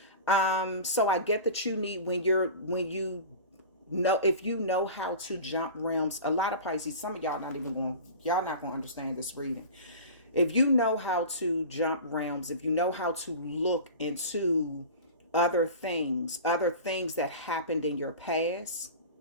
So I get that you need, if you know how to jump realms. A lot of Pisces, some of y'all not going to understand this reading. If you know how to jump realms, if you know how to look into other things that happened in your past,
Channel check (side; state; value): both; inverted; correlation -0.35